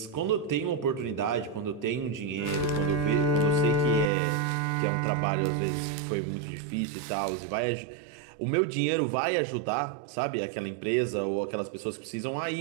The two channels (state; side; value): drops out; left; at 4.1 s